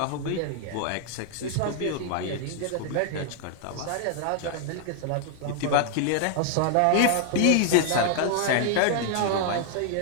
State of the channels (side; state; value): both; different; correlation 0.00